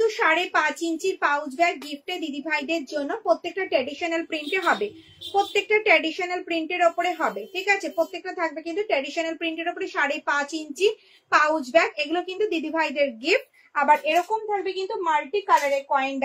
5.5 ইঞ্চির পাউচ ব্যাগ গিফটে দিদি ভাইদের জন্য। প্রত্যেকটা ট্র্যাডিশনাল প্রিন্টে হবে, প্রত্যেকটা ট্র্যাডিশনাল প্রিন্টের ওপরে হবে, ঠিক আছে। প্রত্যেকটা থাকবে কিন্তু ট্র্যাডিশনাল প্রিন্টের ওপরে 5.5 ইঞ্চি পাউচ ব্যাগ, এগুলো কিন্তু দিদি ভাইদের গিফট। আবার এরকম থাকবে কিন্তু মাল্টি কালারের কয়েন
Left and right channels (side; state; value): both; identical; correlation 1.00